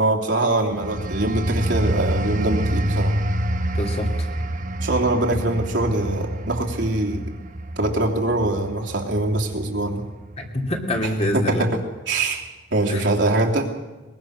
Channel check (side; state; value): both; normal; correlation 0.40